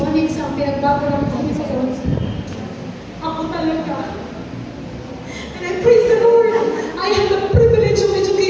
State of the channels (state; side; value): identical; both; correlation 1.00